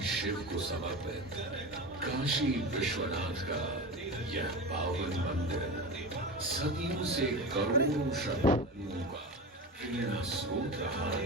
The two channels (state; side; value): normal; both; correlation 0.26